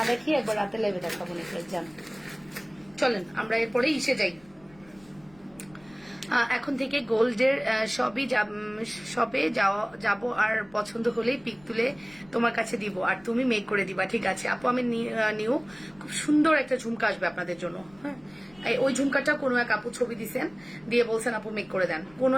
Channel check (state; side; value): noise; left; rumble, 27 dB below the sound